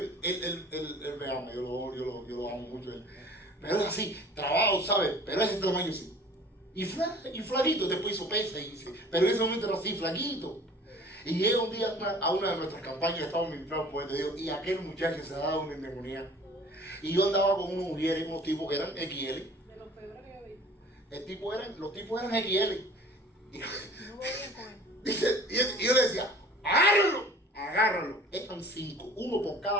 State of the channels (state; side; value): normal; both; correlation 0.47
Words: él me ama, yo lo amo mucho. Pero es así, trabado, ¿sabes? Pero es ese tamaño sí. Y flaquito, después hizo pesa, pero en ese momento era así, flaquito. Y llega un día a una de nuestras campañas, estábamos ministrando por Dios, y aquel muchacho se daba una endemoniada. Y yo andaba con unos mujeres, unos tipos que eran XL. De los peores que yo vi. Los tipos eran XL. Y, No voy bien con él. dice, y yo le decía, agárralo. Eran 5, uno por